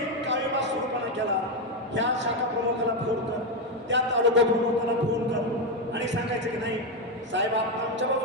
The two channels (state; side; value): normal; both; correlation 0.08